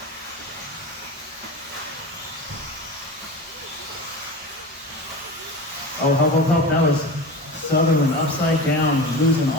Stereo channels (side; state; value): both; normal; correlation 0.29